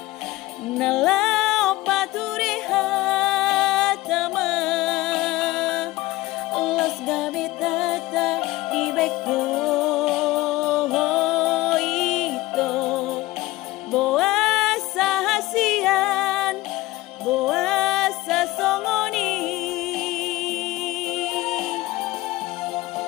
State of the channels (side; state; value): right; quieter; 18.7 dB